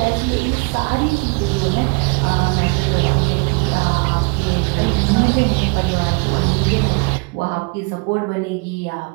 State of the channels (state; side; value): quieter; left; 31.6 dB